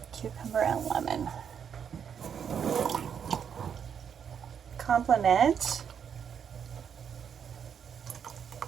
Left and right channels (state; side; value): quieter; left; 7.7 dB